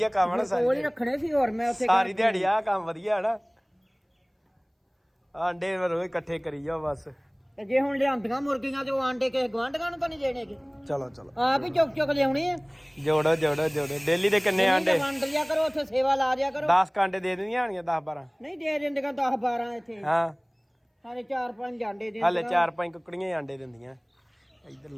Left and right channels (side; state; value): both; identical; correlation 1.00